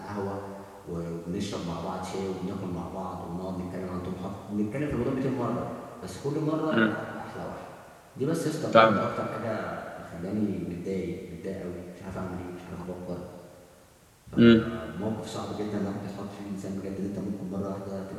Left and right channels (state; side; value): identical; both; correlation 1.00